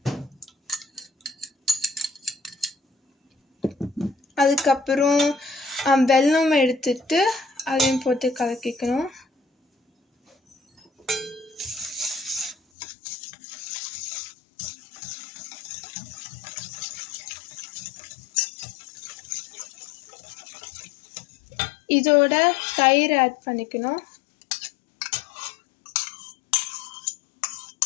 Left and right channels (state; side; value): drops out; right; at 12.6 s